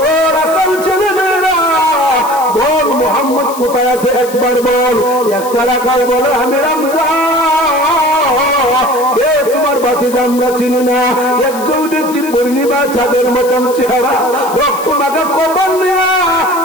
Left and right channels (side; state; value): left; noise; hiss, 14 dB below the sound